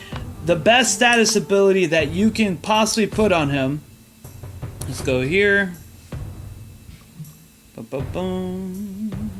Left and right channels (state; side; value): identical; both; correlation 1.00